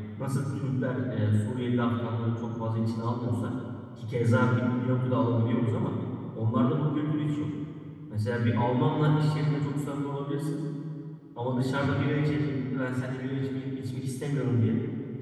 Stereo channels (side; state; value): both; identical; correlation 1.00